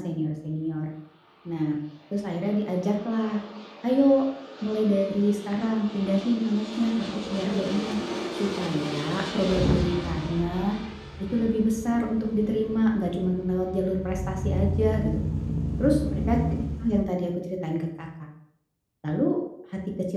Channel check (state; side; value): identical; both; correlation 1.00